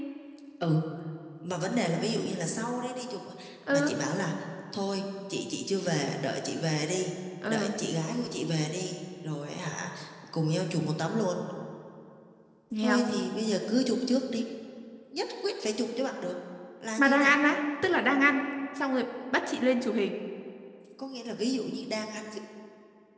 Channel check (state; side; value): identical; both; correlation 1.00